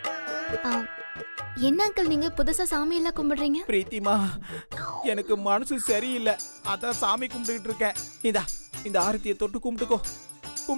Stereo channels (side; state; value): both; inverted; correlation -1.00